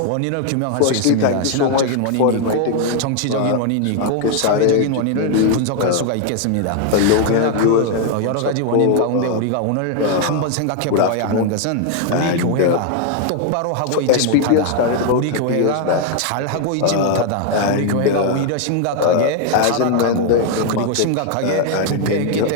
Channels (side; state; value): both; different; correlation 0.00